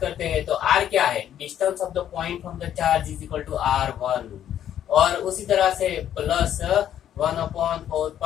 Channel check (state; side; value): quieter; right; 10.6 dB